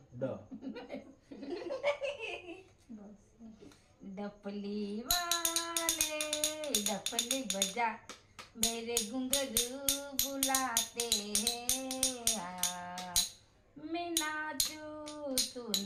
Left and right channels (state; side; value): identical; both; correlation 1.00